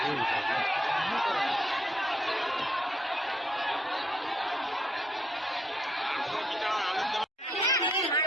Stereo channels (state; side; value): normal; both; correlation 0.74